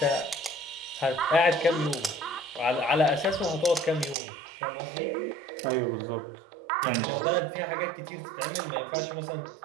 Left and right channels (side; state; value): left; drops out; at 4.2 s